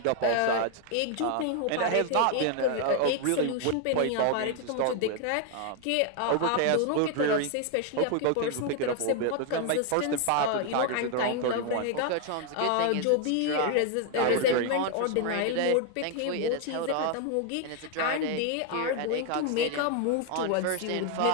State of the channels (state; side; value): different; both; correlation 0.00